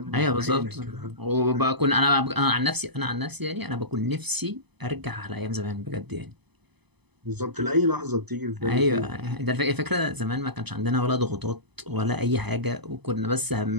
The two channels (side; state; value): left; late; 0.99 ms